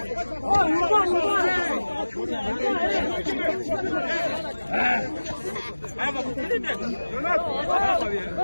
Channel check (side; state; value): both; inverted; correlation -1.00